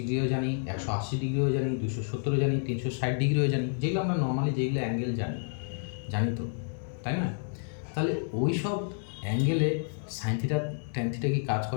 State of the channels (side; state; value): right; silent; digital silence